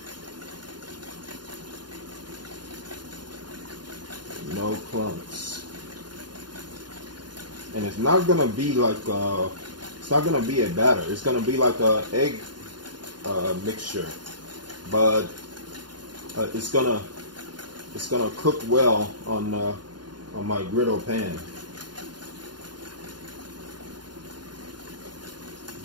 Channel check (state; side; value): late; left; 0.71 ms